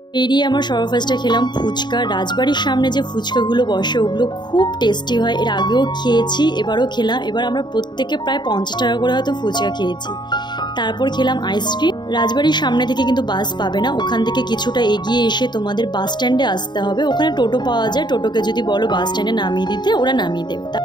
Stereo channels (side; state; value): right; late; 0.21 ms